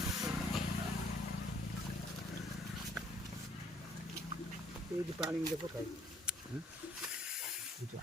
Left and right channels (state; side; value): normal; both; correlation 0.64